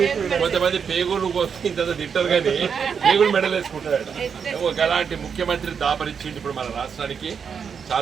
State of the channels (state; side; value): quieter; left; 6.7 dB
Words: కొంతమంది పేగులు ఇంత తింటారు కానీ పేగులు మెడలేసుకుంటాడు. అలాంటి ముఖ్యమంత్రి దాపరించింది ఇప్పుడు మన రాష్ట్రానికి.